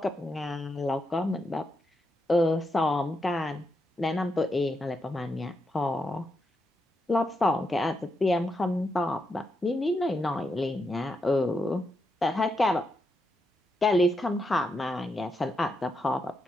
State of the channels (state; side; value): normal; both; correlation 0.84